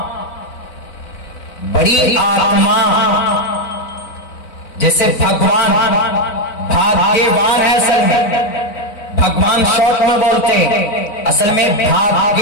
बड़ी आत्मा, जैसे भगवान भाग्यवान है। असल में भगवान शॉर्ट में बोलते हैं, असल में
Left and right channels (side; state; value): right; late; 4.0 ms